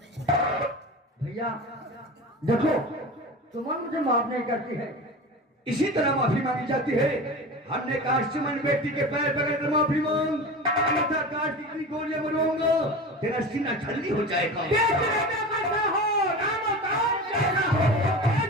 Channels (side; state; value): both; normal; correlation 0.31